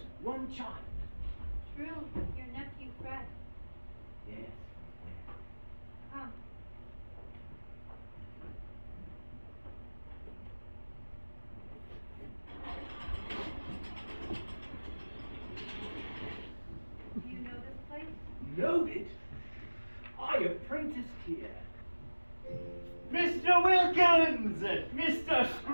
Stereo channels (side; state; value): both; inverted; correlation -1.00